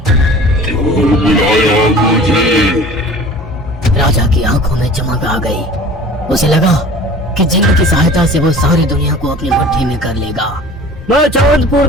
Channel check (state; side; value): normal; both; correlation 0.44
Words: क्यों बुलाया मुझे? राजा की आंखों में चमक आ गई। उसे लगा कि जिन की सहायता से वो सारी दुनिया को अपनी मुट्ठी में कर लेगा। मैं चांदपुर